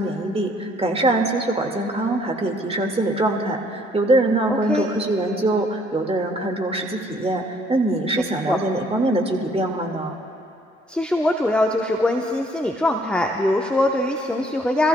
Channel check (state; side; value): normal; both; correlation 0.63